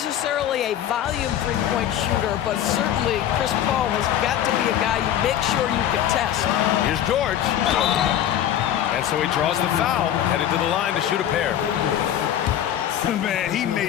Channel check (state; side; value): quieter; right; 11.0 dB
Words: a volume three-point shooter, but certainly Chris Paul has got to be a guy you make sure you can test. Here's George. And so he draws the foul, headed to the line to shoot a pair. Man, he